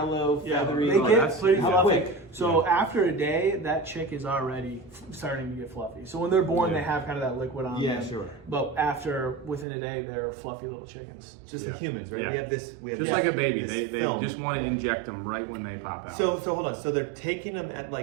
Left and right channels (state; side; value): drops out; left; at 9.7 s